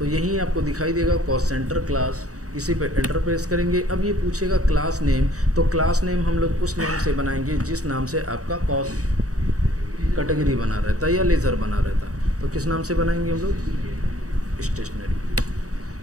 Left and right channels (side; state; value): left; late; 0.66 ms